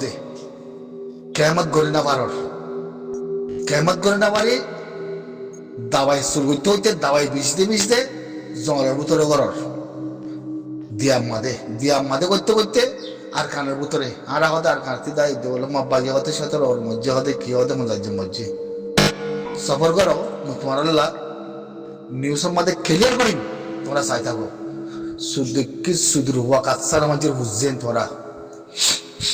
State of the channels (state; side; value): identical; both; correlation 1.00